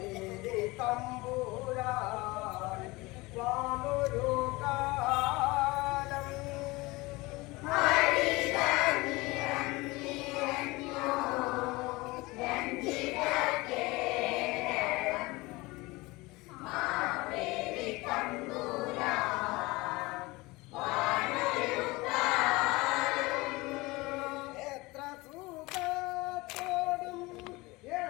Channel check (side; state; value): right; quieter; 22.5 dB